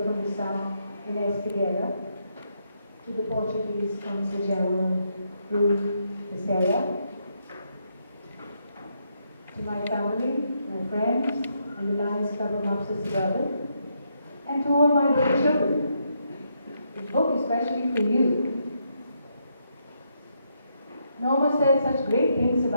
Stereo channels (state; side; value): inverted; both; correlation -0.78